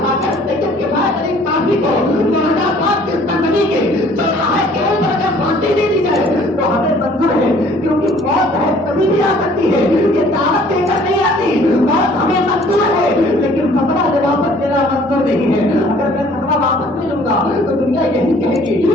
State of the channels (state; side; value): normal; both; correlation 0.55